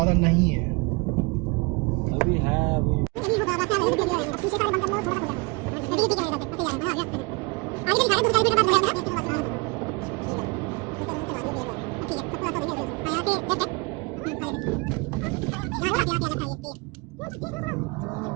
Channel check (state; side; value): quieter; left; 27.9 dB